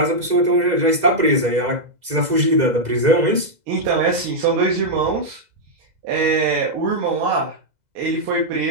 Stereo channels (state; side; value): late; left; 2.0 ms